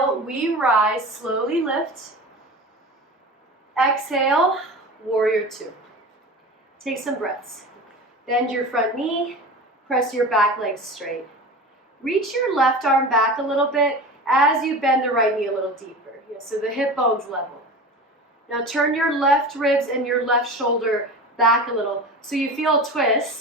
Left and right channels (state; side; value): normal; both; correlation 0.32